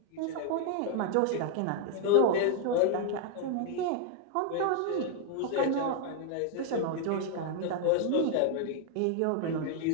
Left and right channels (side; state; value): both; different; correlation 0.00